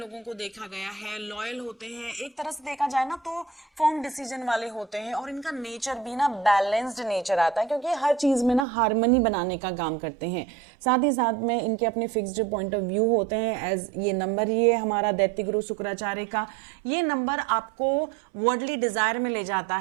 को देखा गया है, लॉयल होते हैं, एक तरह से देखा जाए ना तो फर्म डिसीजन वाले होते हैं। और इनका नेचर भी ना बैलेंस्ड नेचर आता है क्योंकि हर चीज में ना हार्मनी बनाने का काम करते हैं। साथ ही साथ में इनके अपने फिक्स्ड पॉइंट ऑफ व्यू होते हैं। एज ये नंबर ही है हमारा दैत्य गुरु शुक्राचार्य का, ये नंबर आपको वर्ल्डली डिजायर में ले जाता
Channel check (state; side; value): drops out; left; at 8.7 s